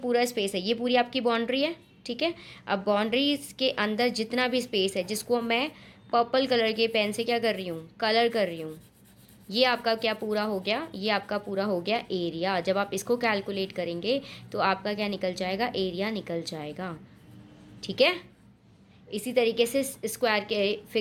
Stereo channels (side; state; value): both; identical; correlation 1.00